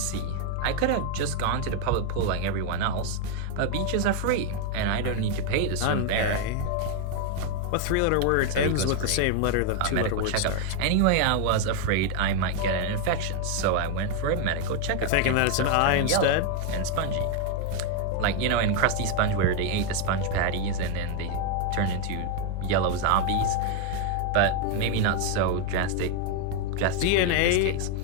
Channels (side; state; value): both; different; correlation 0.01